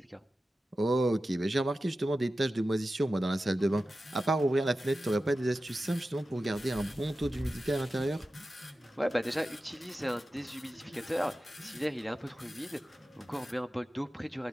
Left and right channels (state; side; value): normal; both; correlation 0.93